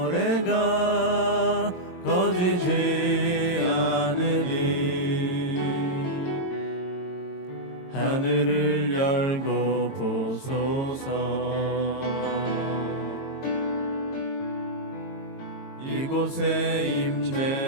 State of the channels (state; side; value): late; right; 22 ms